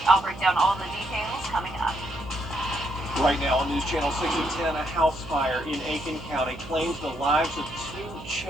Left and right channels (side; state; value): right; noise; hum, 15 dB below the sound